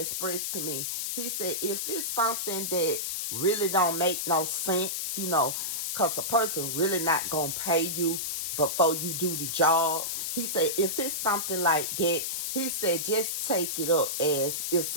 to me, he said, if it's something that really don't make no sense, because a person really not going to pay you before you do the job. He said, if it's something like that, he said, just take it up as it's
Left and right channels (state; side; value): noise; left; hiss, 2 dB below the sound